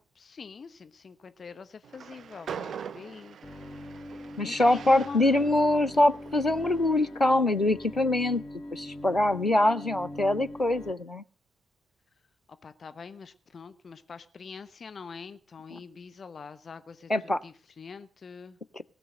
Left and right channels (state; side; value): normal; both; correlation 0.81